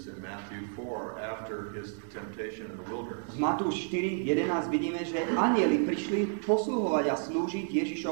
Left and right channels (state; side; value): silent; left; digital silence